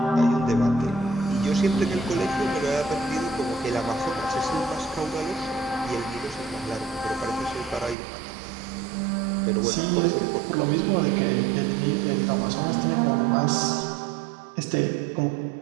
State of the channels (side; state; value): left; drops out; at 8.0 s